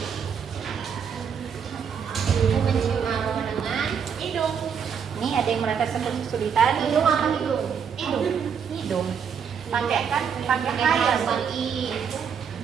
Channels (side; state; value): left; quieter; 7.1 dB